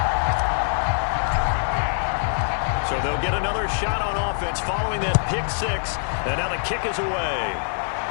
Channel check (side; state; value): right; silent; 57 dB below the other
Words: So they'll get another shot on offense following that pick 6, and now the kick is away.